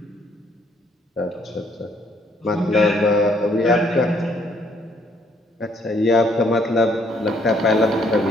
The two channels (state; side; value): normal; both; correlation 0.66